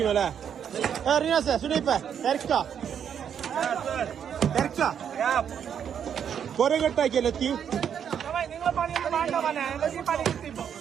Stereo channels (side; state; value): left; quieter; 8.3 dB